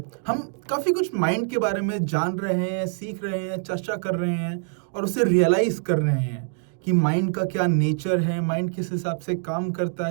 हम काफ़ी कुछ माइंड के बारे में जान रहे हैं, सीख रहे हैं, चर्चा कर रहे हैं और उसे रियलाइज़ कर रहे हैं कि माइंड का क्या नेचर है, माइंड किस हिसाब से काम करता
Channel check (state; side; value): silent; left; 62 dB below the other